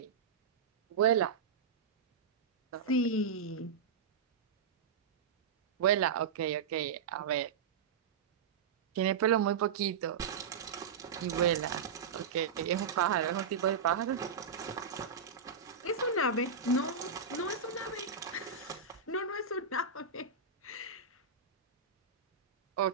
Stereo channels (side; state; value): left; quieter; 5.9 dB